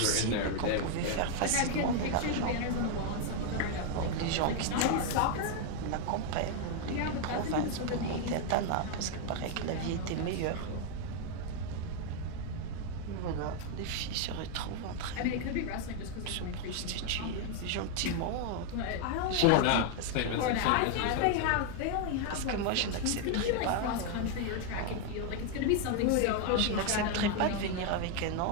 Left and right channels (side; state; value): both; different; correlation 0.01